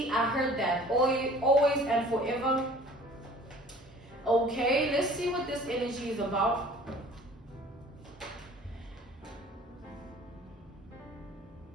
I heard that. Always and forever. Okay, let's see what this energy is about.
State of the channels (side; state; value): both; normal; correlation 0.48